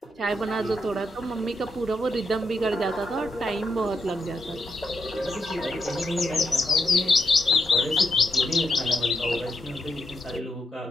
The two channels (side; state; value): both; normal; correlation 0.79